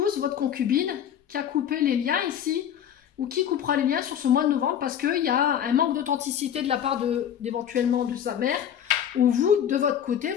votre concubine, qui a coupé les liens ici, ou qui coupera les liens sur ce mois de novembre, parce qu'il y a un manque d'authenticité de la part d'éventuellement de sa mère, ou vous, de votre côté,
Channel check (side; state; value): right; quieter; 9.4 dB